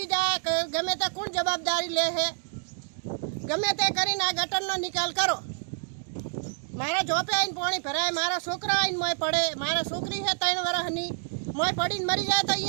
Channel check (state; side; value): silent; left; 56 dB below the other